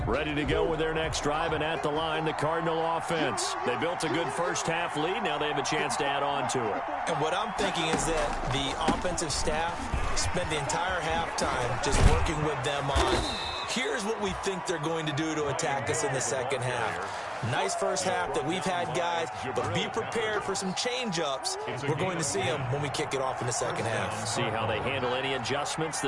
Ready to go with their next drive, and at the line, the Cardinal offense. They built a good first-half lead. Now they have a chance to add on to it. And what I'm thinking is that the offensive staff spent the entire halftime just working with them on, here's what we think they're going to do to attack us in the second half. Nice first half that we've had, guys, but be prepared for some change-ups. We're going to see them when we kick it off in the second half. See how they handle any adjustments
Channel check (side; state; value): both; identical; correlation 1.00